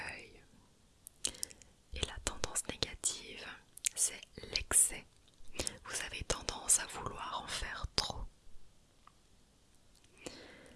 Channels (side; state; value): both; identical; correlation 1.00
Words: Et la tendance négative, c'est l'excès. Vous avez tendance à vouloir en faire trop.